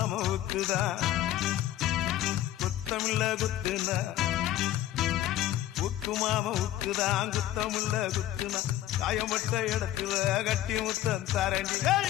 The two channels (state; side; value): quieter; right; 13.6 dB